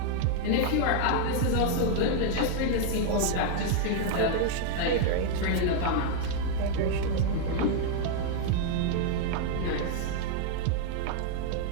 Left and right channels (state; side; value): different; both; correlation 0.00